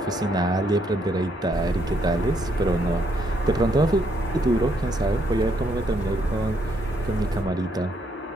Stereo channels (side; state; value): both; normal; correlation 0.73